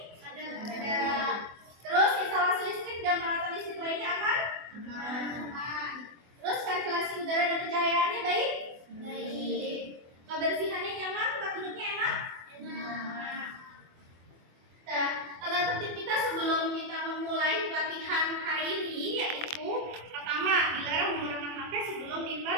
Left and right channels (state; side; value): late; left; 24 ms